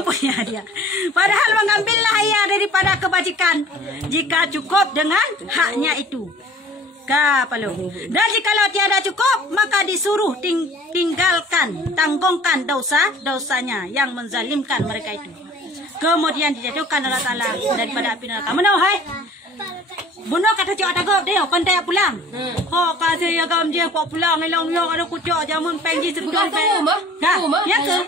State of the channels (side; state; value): both; normal; correlation 0.48